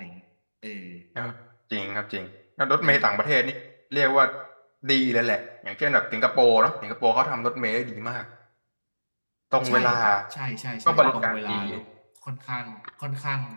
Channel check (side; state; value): both; inverted; correlation -1.00